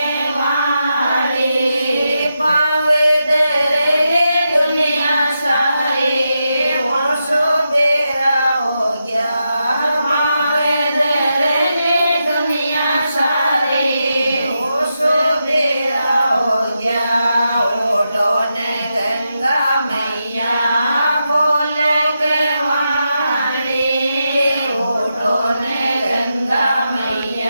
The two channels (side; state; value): both; inverted; correlation -0.87